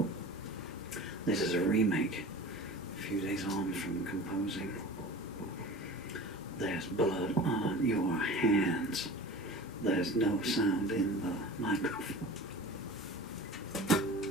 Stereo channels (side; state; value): both; normal; correlation 0.37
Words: This is a remake, a few days on from composing. There's blood on your hands. There's no sound in the microphone.